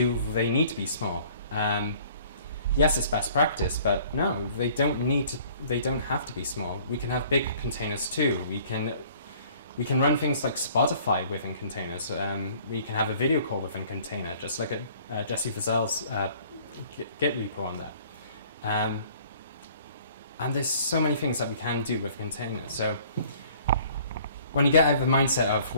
they need to be small? Yes, it's best practice, but no, they don't have to be small. We can have big containers too. We can run things like Spotify within containers. We can have a video call within container, just like Jesse Fazell's Git repo on that. And there's so many things that we can do with containers. So when you get out of the mindset of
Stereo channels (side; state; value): both; inverted; correlation -0.55